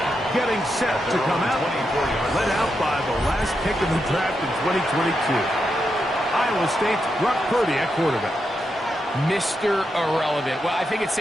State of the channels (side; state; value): both; normal; correlation 0.85